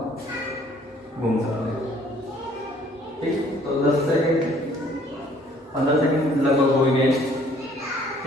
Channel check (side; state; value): both; normal; correlation 0.59